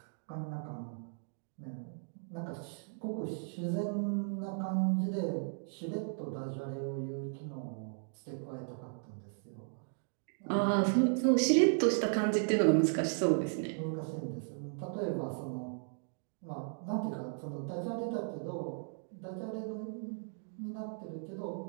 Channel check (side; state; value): left; silent; digital silence